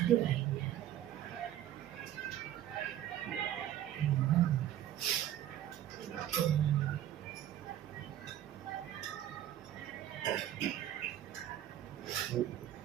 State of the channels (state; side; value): quieter; left; 11.8 dB